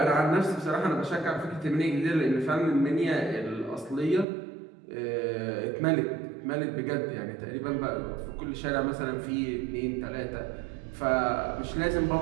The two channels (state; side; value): drops out; left; at 4.2 s